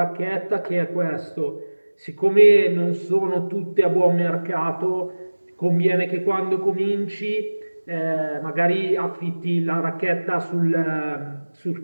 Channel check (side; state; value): both; inverted; correlation -1.00